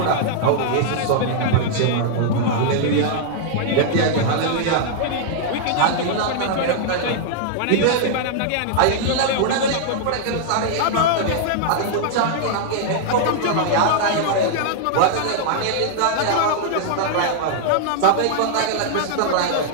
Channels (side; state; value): both; different; correlation -0.01